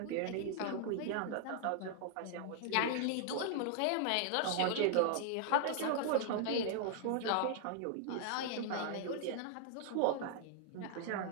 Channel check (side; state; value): both; different; correlation 0.00